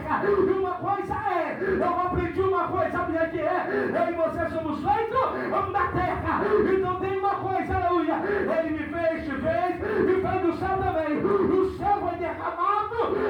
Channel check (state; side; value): identical; both; correlation 1.00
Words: E uma coisa eu aprendi uma coisa, sabe o que é? Eu e você somos feitos da terra. Então tem uma coisa, aleluia, ele me fez, te fez e fez do céu também. O céu foi derramado,